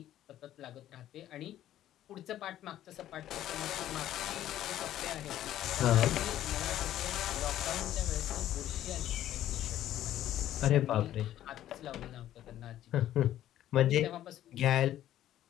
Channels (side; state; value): right; quieter; 12.6 dB